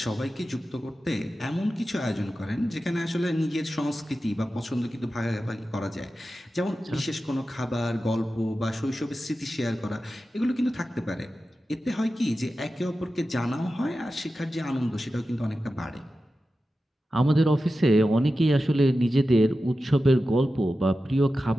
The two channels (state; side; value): normal; both; correlation 0.93